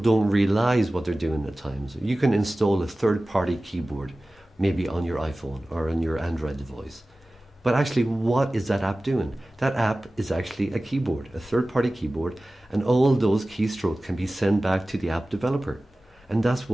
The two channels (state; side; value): normal; both; correlation 0.97